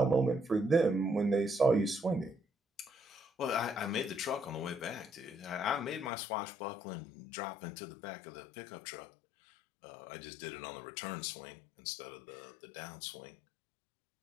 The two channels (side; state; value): right; drops out; at 6.1 s